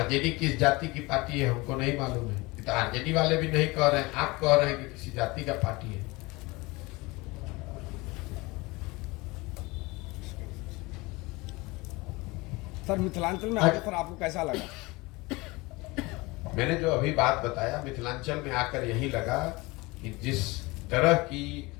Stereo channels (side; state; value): right; quieter; 23.4 dB